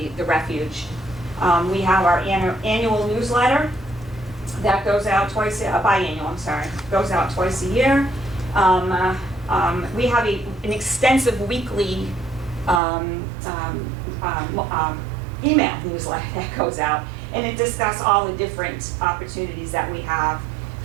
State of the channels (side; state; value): left; drops out; at 12.8 s